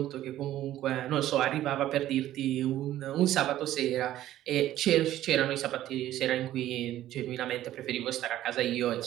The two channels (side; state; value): left; quieter; 13.5 dB